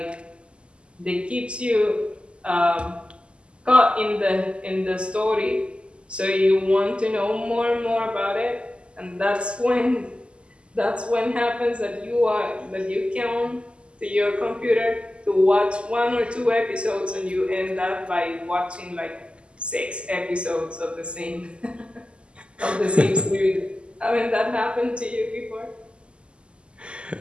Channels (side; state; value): left; late; 0.052 ms